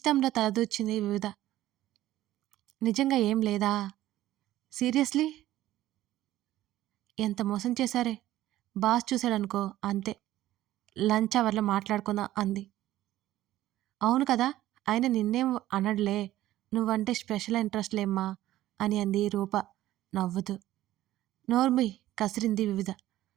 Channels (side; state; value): left; quieter; 14.5 dB